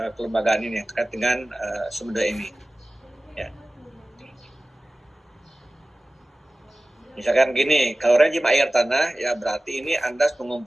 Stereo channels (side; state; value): both; normal; correlation 0.96